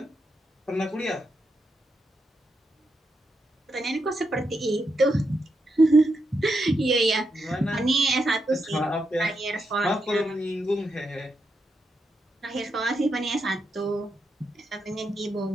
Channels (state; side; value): normal; both; correlation 0.83